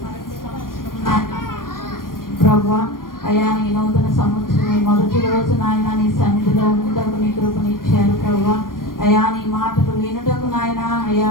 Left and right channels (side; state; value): right; late; 0.91 ms